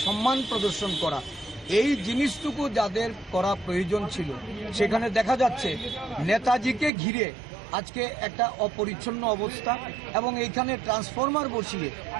সম্মান প্রদর্শন করা, এই জিনিসটুকু যাদের করা প্রয়োজন ছিল, সেখানে দেখা যাচ্ছে নেতাজিকে ঘিরে আজকে একটা অপরিচ্ছন্ন অবস্থা এবং এইখানে ট্রান্সফরমার বসিয়ে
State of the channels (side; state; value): left; drops out; at 6.9 s